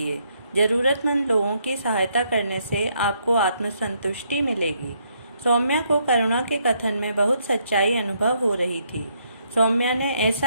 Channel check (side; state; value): both; inverted; correlation -0.73